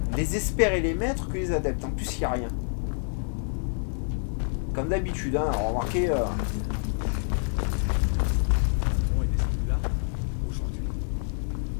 les experts et les maîtres que les adeptes. En plus, il n'y a rien. Comme d'habitude, hein, remarquez. On est descendu là aujourd'hui.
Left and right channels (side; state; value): right; silent; 60 dB below the other